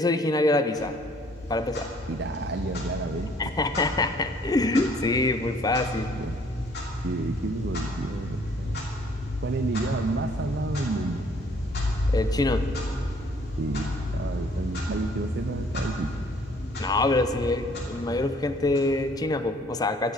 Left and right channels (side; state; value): both; normal; correlation 0.60